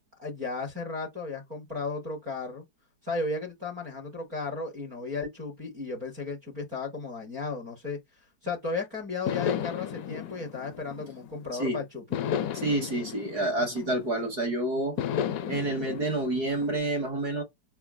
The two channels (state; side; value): late; left; 4.8 ms